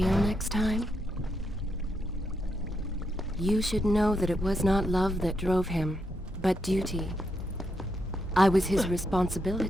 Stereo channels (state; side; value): normal; both; correlation 0.81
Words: next time? You should know that it was not love that drove him, but duty. I was his